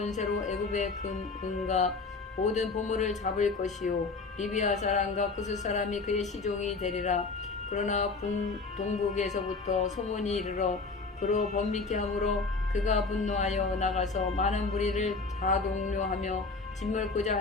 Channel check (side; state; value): right; quieter; 4.0 dB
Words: 애굽의 은과 모든 보물을 잡을 것이요 리비아 사람과 구스 사람이 그의 시종이 되리라. 그러나 동북에서부터 소문이 이르러 그로 번민케 하므로 그가 분노하여 나가서 많은 무리를 다동료하며 짓물고자